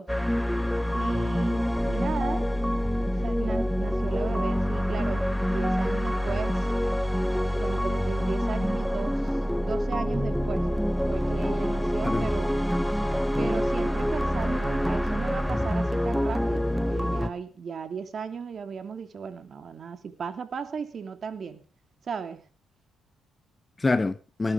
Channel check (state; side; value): normal; both; correlation 0.97